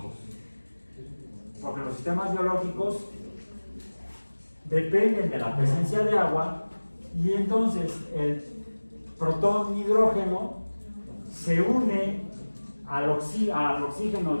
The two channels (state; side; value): inverted; both; correlation -1.00